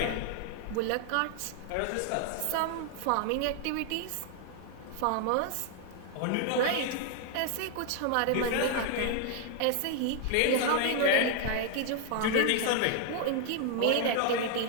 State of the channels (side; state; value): both; different; correlation 0.00